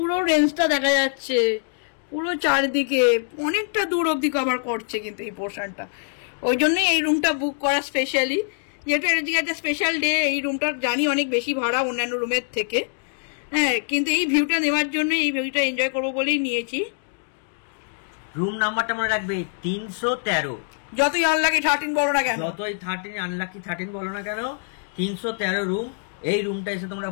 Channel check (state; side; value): silent; right; digital silence